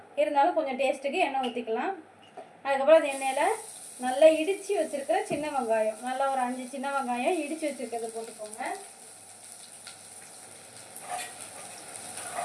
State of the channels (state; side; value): identical; both; correlation 1.00